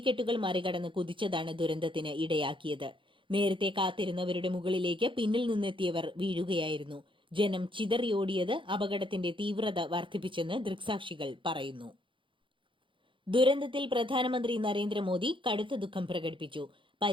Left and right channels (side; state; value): left; late; 0.24 ms